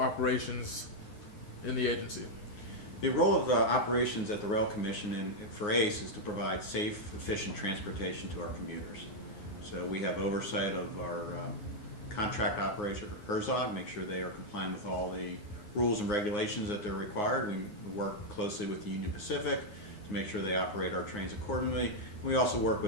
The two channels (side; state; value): right; late; 9.6 ms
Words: operations in the agency? The role of operations at the Rail Commission and for ACE is to provide safe, efficient transportation to our commuters. So we have oversight of our contract operator, Herzog, make sure they are compliant with all the rules and regulations that they're required. We work closely with the Union Pacific to make sure they operate our trains accordingly. We also work